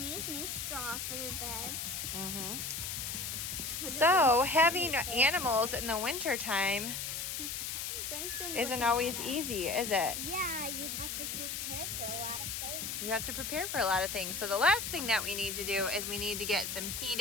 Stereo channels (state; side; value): noise; left; hiss, 4 dB below the sound